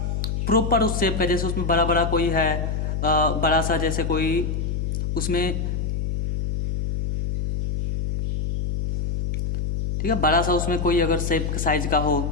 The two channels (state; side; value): noise; left; hum, 1 dB below the sound